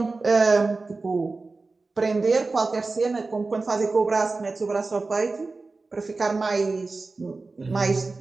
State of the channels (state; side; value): quieter; left; 3.7 dB